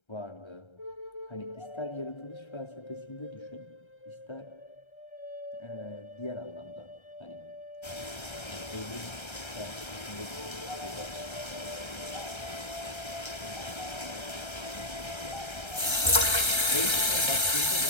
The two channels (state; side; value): late; right; 1.3 ms